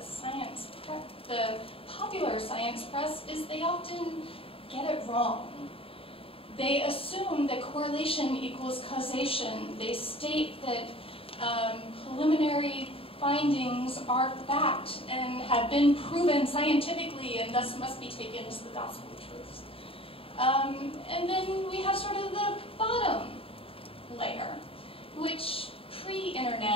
the popular science press is they often get it wrong. They assume that correlation equals causation. They state that preliminary findings are fact and have been proven scientifically and thus must be taken as the gospel truths. And then we have sort of the bottom layer, which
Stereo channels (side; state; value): right; late; 0.27 ms